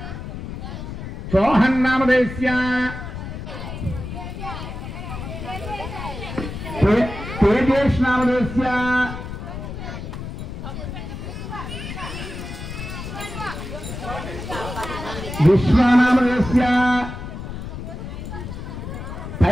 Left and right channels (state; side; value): noise; left; rumble, 8 dB below the sound